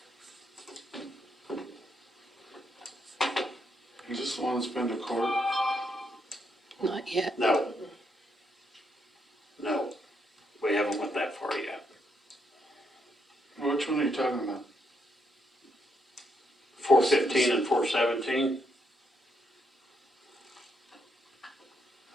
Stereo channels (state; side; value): normal; both; correlation 0.77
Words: Is this the one that's been to court? Not yet. No. No, we haven't went that far yet. Which one are you talking about? 415 and 417.